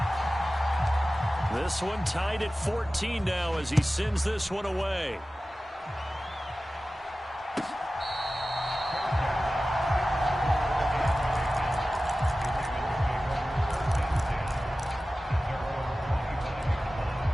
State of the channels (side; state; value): both; normal; correlation 0.96